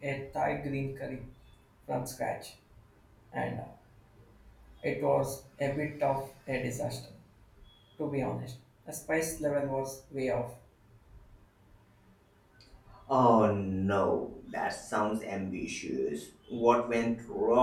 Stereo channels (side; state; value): both; identical; correlation 1.00